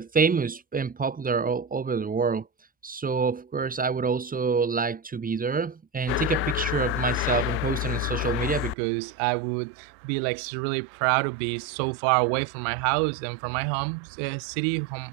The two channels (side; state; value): left; drops out; at 8.8 s